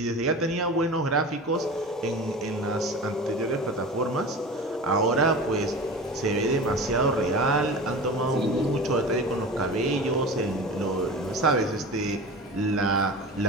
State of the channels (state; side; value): normal; both; correlation 0.33